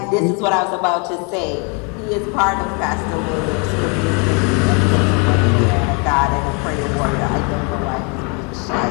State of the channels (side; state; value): right; quieter; 34.0 dB